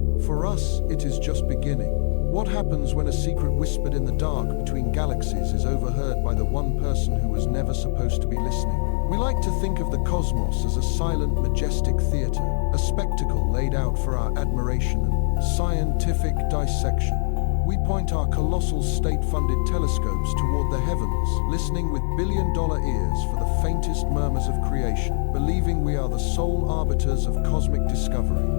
For us, it is just beginning. What happens when a secret whispered in the dark between galaxies is overheard by the one person who was never supposed to be listening? We like to think of the cosmos as a silent, majestic theater, a spectacle laid out for our admiration and scientific dissection. We point our colossal state-funded telescopes toward the heavens, listening with billion-dollar ears for the faintest murmurs of creation, believing we are the sole arbiters of cosmic discovery.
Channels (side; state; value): right; silent; 63 dB below the other